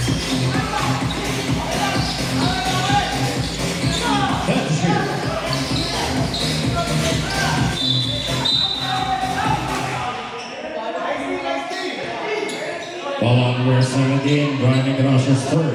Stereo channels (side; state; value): both; identical; correlation 1.00